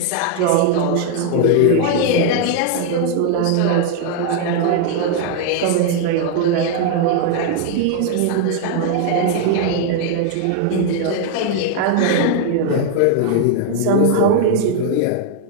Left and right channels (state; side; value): different; both; correlation 0.00